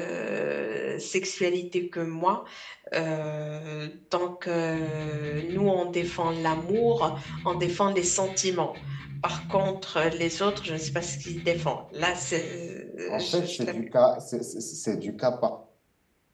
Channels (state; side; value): identical; both; correlation 1.00